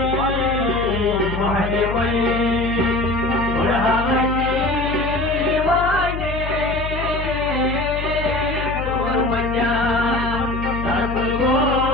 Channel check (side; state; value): left; noise; hum, 6 dB below the sound